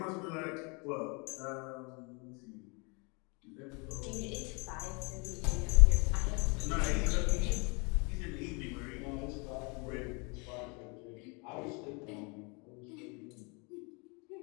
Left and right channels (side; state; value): right; quieter; 31.8 dB